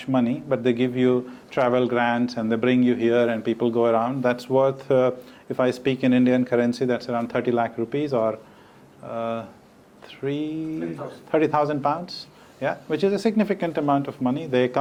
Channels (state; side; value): identical; both; correlation 1.00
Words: money, but they give you travel grants and they bring you here and people go around. That's worth, if I speak in Indian currency, that's around 30 lakh rupees or 30,000 pounds. Yeah, which is a significant amount of money. They